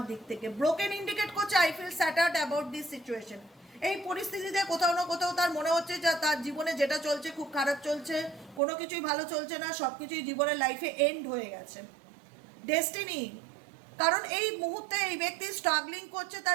দিক থেকে। ব্রোকেন ইন্ডিকেট করছে I feel shattered about this situation. এই পরিস্থিতিতে কোথাও না কোথাও তার মনে হচ্ছে যে তার জীবনে যেটা চলছে খুব খারাপ চলছে, কোনো কিছুই ভালো চলছে না, সব কিছুই জীবনের লাইফে এন্ড হয়ে গেছে। ডেস্টিনি, কারণ এই মুহূর্তে এই ব্যক্তি স্ট্রাগলিং করছে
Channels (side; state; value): left; drops out; at 8.6 s